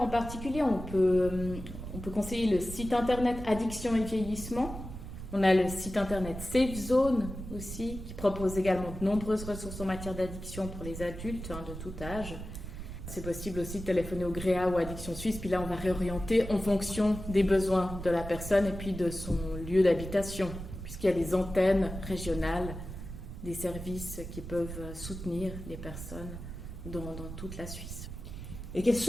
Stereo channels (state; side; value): noise; right; rumble, 9 dB below the sound